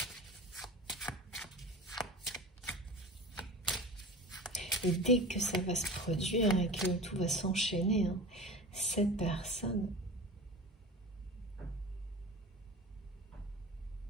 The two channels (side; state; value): both; normal; correlation 0.35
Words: Et dès que ça va se produire et que tout va s'enchaîner, hein, cette personne